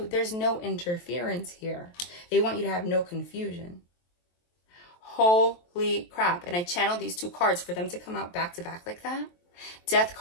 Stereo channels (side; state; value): right; late; 23 ms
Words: There's no interference here. They want you to have no confusion. Holy crap. And I channeled these 2 cards for them to come out back to back like that. Death